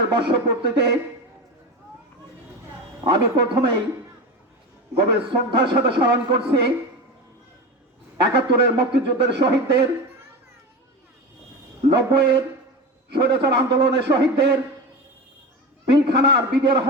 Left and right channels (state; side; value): normal; both; correlation 0.24